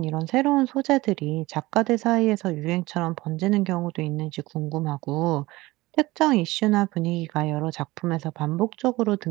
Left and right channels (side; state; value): left; quieter; 19.7 dB